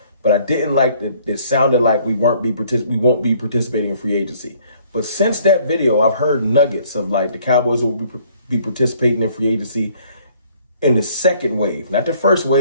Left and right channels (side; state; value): both; inverted; correlation -0.60